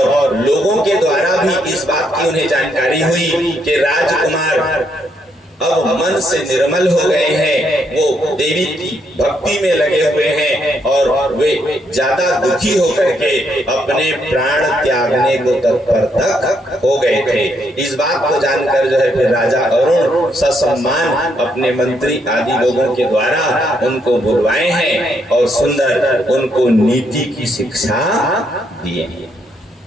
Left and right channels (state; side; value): normal; both; correlation 0.75